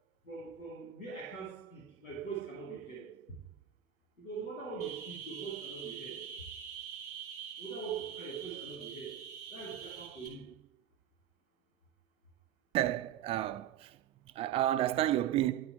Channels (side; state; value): left; quieter; 10.6 dB